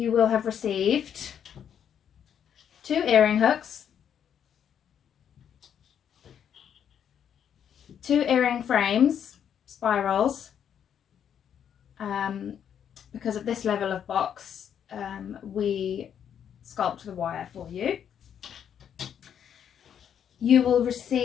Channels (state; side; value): quieter; right; 8.7 dB